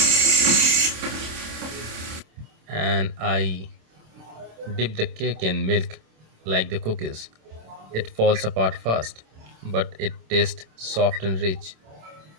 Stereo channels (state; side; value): late; left; 27 ms